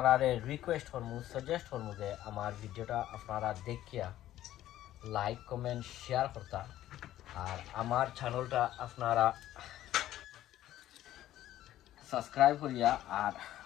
রিকোয়েস্ট করবো, সাজেস্ট করবো যে আমার ভিডিওটা আপনারা দেখিয়া লাইক কমেন্ট শেয়ার করতা। আর আমার চ্যানেলটা আপনারা সাবস্ক্রাইব করিয়া আর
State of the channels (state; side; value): quieter; right; 13.4 dB